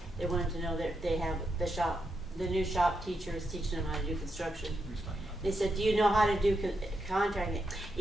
They wanted to know that they have the new shop teachers teaching them how to do construction. They said, do you know how to do contracting?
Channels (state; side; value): normal; both; correlation 0.83